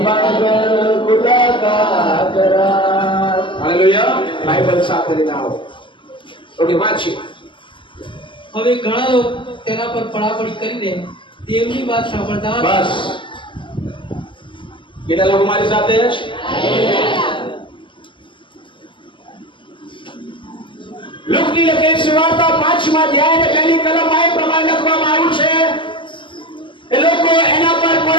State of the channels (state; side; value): late; right; 0.24 ms